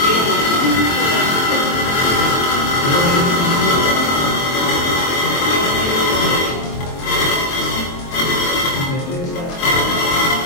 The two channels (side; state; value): right; late; 23 ms